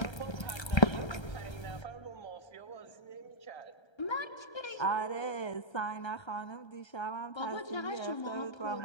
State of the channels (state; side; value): late; right; 1.3 ms